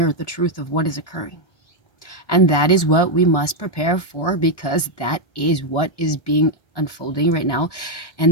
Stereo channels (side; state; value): right; late; 1.3 ms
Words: the truth of what is occurring. And that is what we must prepare for, because that is what is being unfolding right now.